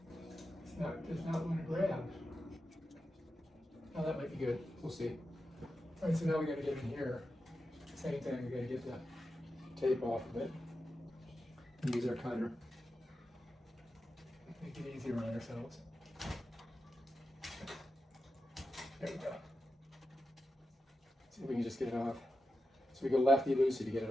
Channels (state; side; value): normal; both; correlation 0.90